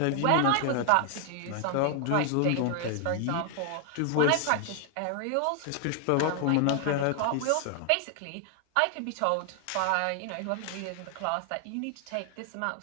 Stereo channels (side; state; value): both; different; correlation 0.00